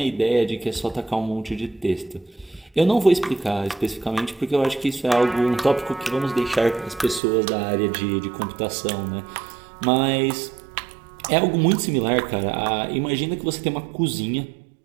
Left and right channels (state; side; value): drops out; left; at 7.2 s